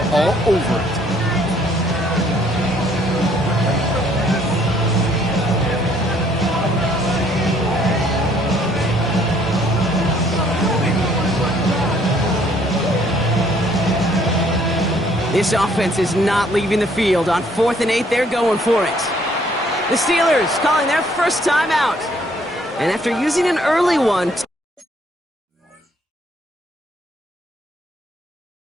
all over it. This offense is not leaving the field. On 4th and 8, they're going for it. The Steelers calling their first timeout. And after using an early one...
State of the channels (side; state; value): both; normal; correlation 0.63